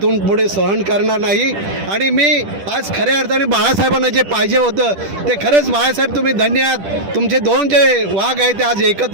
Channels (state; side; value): late; left; 10 ms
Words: पुढे सहन करणार नाही. आणि मी आज खऱ्या अर्थाने बाळासाहेबांना जे पाहिजे होतं ते खरंच बाळासाहेब तुम्ही धन्य आहात. तुमचे दोन जे वाघ आहेत ते आज